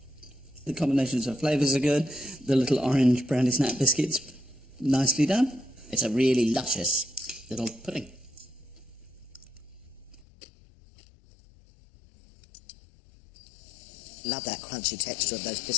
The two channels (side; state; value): right; drops out; at 10.2 s